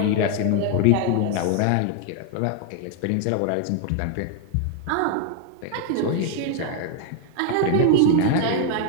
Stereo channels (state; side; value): different; both; correlation 0.00